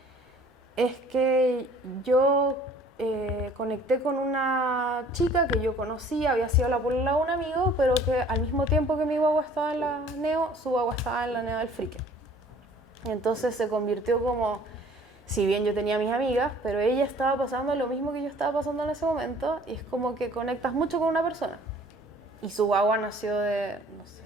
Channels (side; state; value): both; normal; correlation 0.53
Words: es que yo conecté con una chica que yo conocía, había sido la polola de un amigo, pero que al mismo tiempo que mi guagua estaba en la NEO, su guagua estaba en la NEO del Frique. Y entonces se convirtió como, si bien yo tenía mis amigas, pero ella estaba pasando lo mismo que yo estaba pasando en ese momento, y es como que conectas mucho con una persona. Y su guagua nació de, no